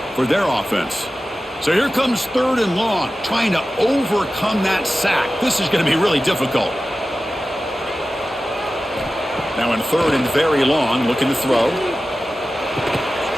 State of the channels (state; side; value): normal; both; correlation 0.94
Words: for their offense. So here comes 3rd and long, trying to overcome that sack. This is going to be really difficult. Now in 3rd and very long, looking to throw.